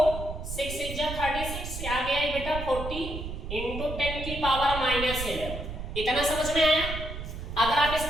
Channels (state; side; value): noise; right; rumble, 7 dB below the sound